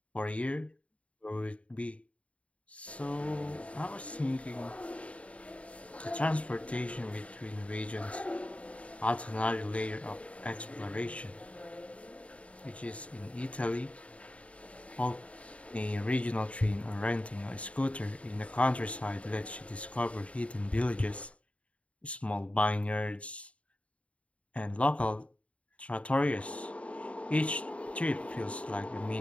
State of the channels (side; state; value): right; late; 0.064 ms